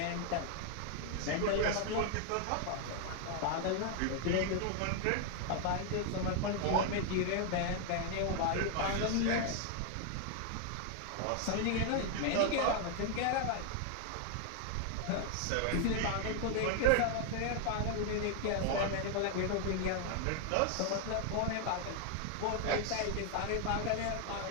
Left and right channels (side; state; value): both; different; correlation 0.00